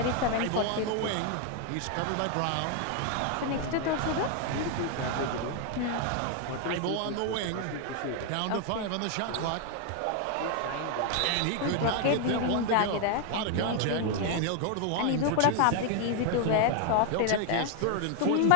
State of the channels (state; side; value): different; both; correlation 0.00